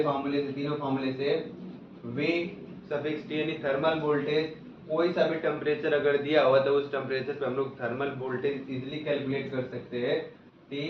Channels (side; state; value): both; identical; correlation 1.00